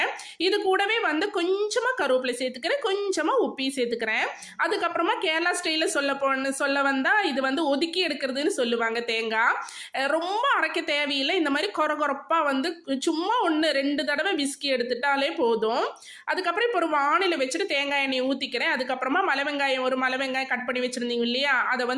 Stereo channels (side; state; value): both; identical; correlation 1.00